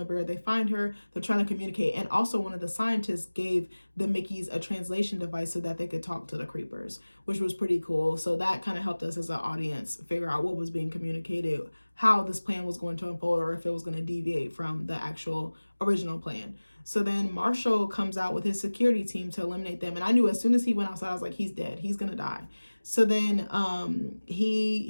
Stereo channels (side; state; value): both; inverted; correlation -1.00